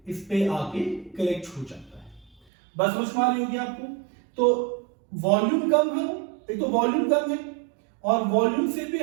इस पे आके कलेक्ट हो जाता है। बस समझ में आ रही होगी आपको। तो वॉल्यूम कम है, एक तो वॉल्यूम कम है, और वॉल्यूम से भी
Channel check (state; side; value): drops out; left; at 2.4 s